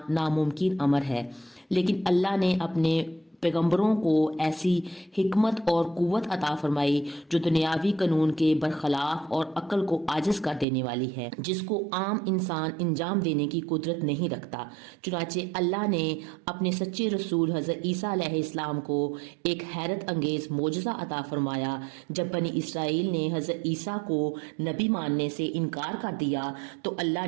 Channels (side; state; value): left; drops out; at 10.7 s